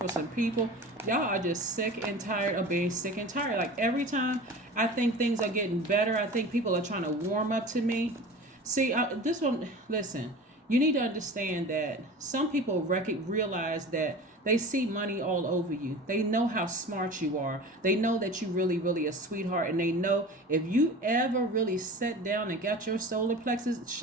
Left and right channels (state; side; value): normal; both; correlation 0.36